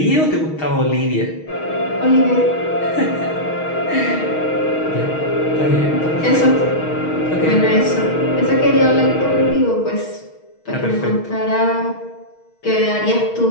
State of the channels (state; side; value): late; right; 6.4 ms